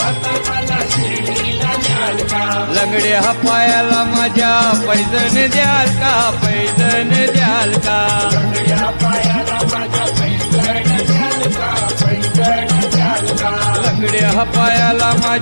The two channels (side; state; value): both; inverted; correlation -1.00